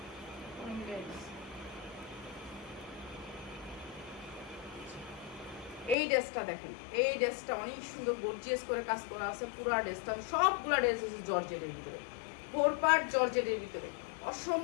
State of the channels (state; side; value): drops out; right; at 6.0 s